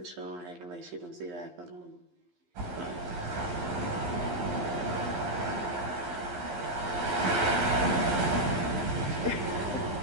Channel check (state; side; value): late; left; 11 ms